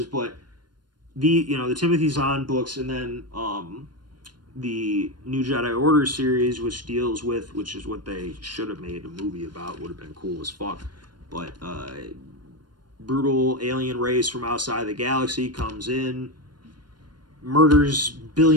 But the Timothy Zahn books, and then the New Jedi Order series, which is what they should have made a movie about, would have been cool as fuck. But brutal alien race from outside the galaxy comes in, murders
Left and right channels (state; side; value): late; left; 0.71 ms